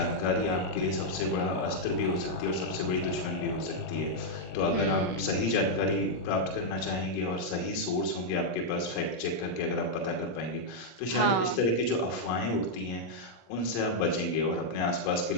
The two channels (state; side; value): late; right; 17 ms